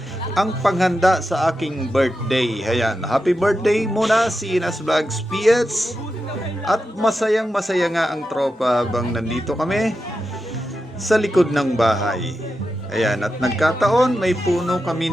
ang panghanda sa aking birthday. Ayan, happy birthday muna CNS Vlogs PS. At masayang masaya nga ang tropa habang nandito kami sa likod ng bahay. Ayan, at nagkataon may puno kami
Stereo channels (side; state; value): both; normal; correlation 0.89